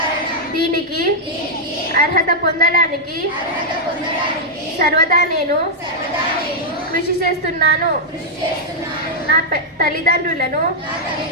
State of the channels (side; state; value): both; normal; correlation -0.05